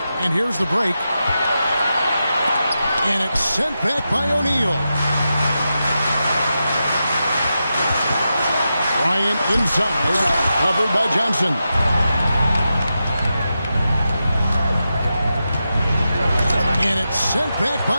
And here's the break. And it's sent back by O'Neal. Bryant inside. Covered by Johnson. And it's sent back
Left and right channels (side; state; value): both; inverted; correlation -0.89